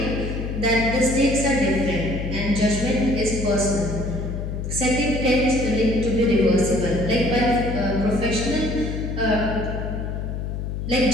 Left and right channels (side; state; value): left; noise; hum, 4 dB below the sound